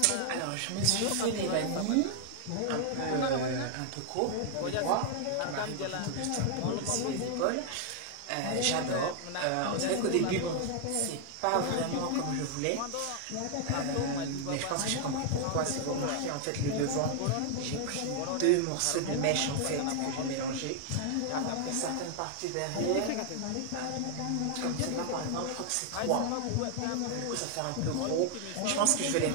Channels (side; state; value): both; different; correlation 0.00